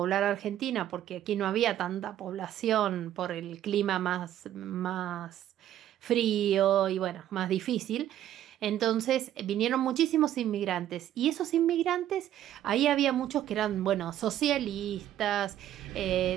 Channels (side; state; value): left; quieter; 11.9 dB